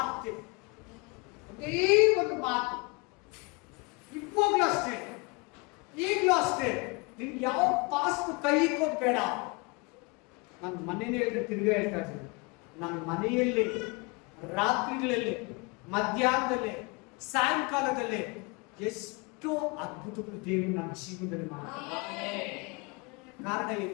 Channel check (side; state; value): right; quieter; 28.9 dB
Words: ಒಂದೇ ಒಂದು ಮಾತು. ಇವಾಗಲೂ ಅಷ್ಟೇ, ಈಗಲೂ ಅಷ್ಟೇ, ನಿನ್ಗೆ ಯಾವ ಪಾಸ್ಟ್ ಕೈ ಇಕ್ಕೋದು ಬೇಡ. ನನ್ನ ಮನೇಲಿ ಹೇಳಿದ್ರೆ ತಿರ್ಗಾ ಹೇಳ್ತಾ ಇದ್ದೀನಿ, ನನ್ನ ಮನೆಯಲ್ಲಿ ರಾತ್ರಿಗಳಲ್ಲಿ, ಮಧ್ಯಾಹ್ನದಲ್ಲಿ, ಸಾಯಂಕಾಲದಲ್ಲಿ ಎಷ್ಟೋ ಅದ್ಭುತಗಳು ದೇವರು ನನ್ನ ಜೀವನದಲ್ಲಿ ಮಾಡ್ತಾರೆ. ಕಾರಣ ಏನು